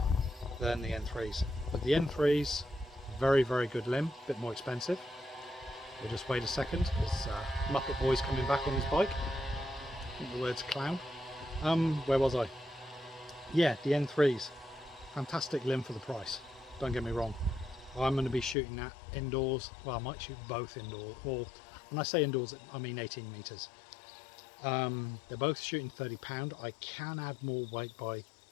than the N3s. But the N3s, very good limb, a bit more expensive. We'll just wait a second, because Muppet Boy's coming back on his bike. I think the word's clown. Where was I? Yeah, the N3s. Fantastic limb for the price, don't get me wrong. I'm going to be shooting that indoors. Well, I might shoot both indoors, or when I say indoors I mean 18 meters. They're both shooting 30 pound. I can add more weight by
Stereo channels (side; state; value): right; drops out; at 18.6 s